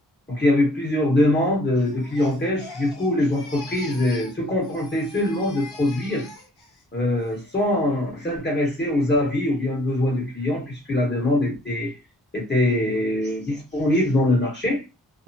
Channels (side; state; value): both; normal; correlation 0.59